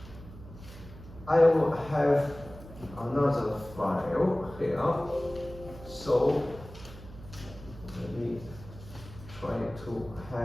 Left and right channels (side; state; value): right; noise; hum, 16 dB below the sound